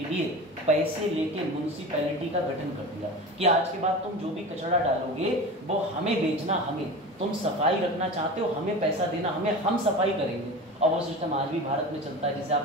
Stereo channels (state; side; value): normal; both; correlation 0.31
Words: लिए पैसे लेके म्युनिसिपैलिटी का गठन कर दिया कि आज के बाद तुम जो भी कचरा डालोगे वो हमें बेचना, हमें, तुम सफाई रखना चाहते हो हमें पैसा देना, हमें, हम सफाई करेंगे। और वो सिस्टम आज भी भारत में चलता है, जैसे आप